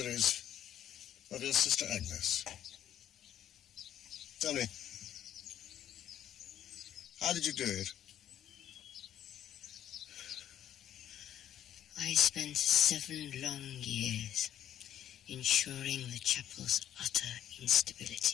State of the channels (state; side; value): quieter; right; 10.9 dB